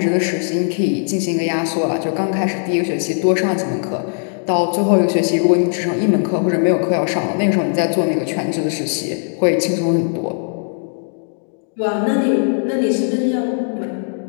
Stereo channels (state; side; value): silent; right; digital silence